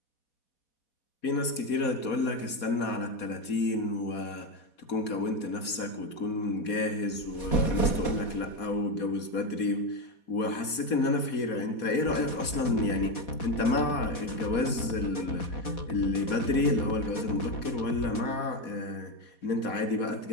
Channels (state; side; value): late; right; 4.2 ms